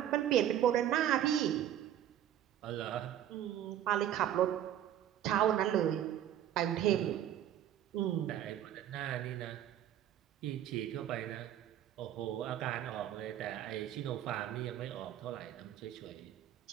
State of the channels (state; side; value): quieter; left; 11.1 dB